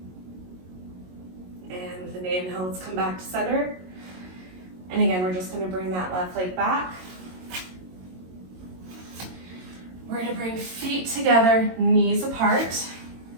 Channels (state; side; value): late; left; 22 ms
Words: And with an inhale, let's come back to center. And again, we're just going to bring that left leg back. We're going to bring feet together, knees apart.